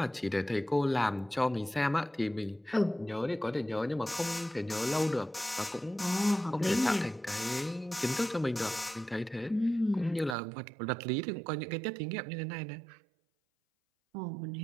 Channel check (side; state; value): left; drops out; at 10.4 s